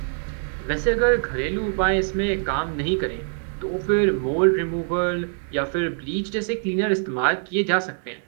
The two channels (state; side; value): silent; left; digital silence